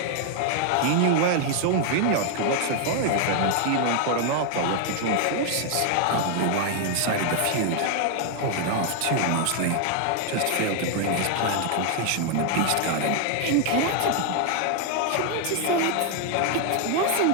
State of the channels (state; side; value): different; both; correlation 0.00